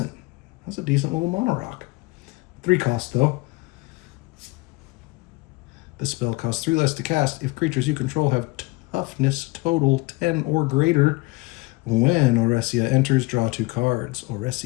That's a decent little mana rock. 3 cost, though. The spell costs 3 less to cast if creatures you control have toughness total 10 or greater. When Oresia enters, draw 2 cards.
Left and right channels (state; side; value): quieter; right; 23.8 dB